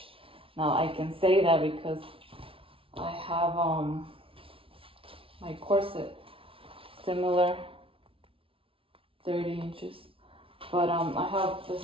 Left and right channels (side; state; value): left; late; 0.26 ms